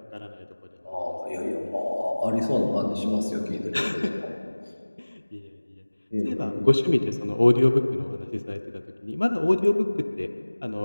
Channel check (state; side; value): inverted; both; correlation -1.00